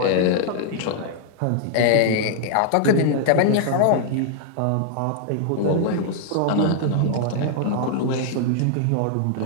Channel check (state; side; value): different; both; correlation -0.01